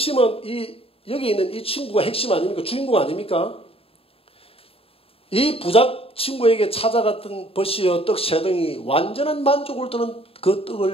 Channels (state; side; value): late; right; 0.27 ms